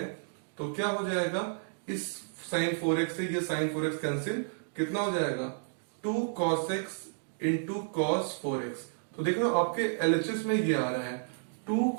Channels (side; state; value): left; silent; digital silence